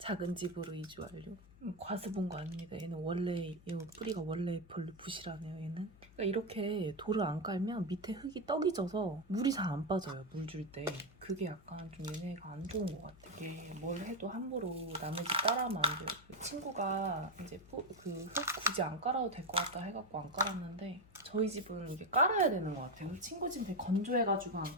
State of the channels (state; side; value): noise; left; hum, 23 dB below the sound